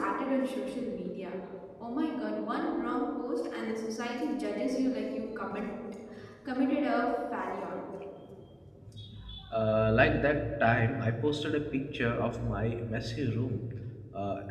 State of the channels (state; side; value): identical; both; correlation 1.00